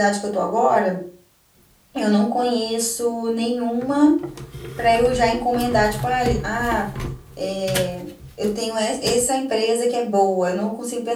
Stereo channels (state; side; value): identical; both; correlation 1.00